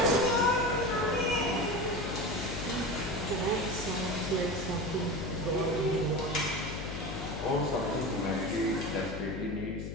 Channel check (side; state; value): left; noise; hum, 7 dB below the sound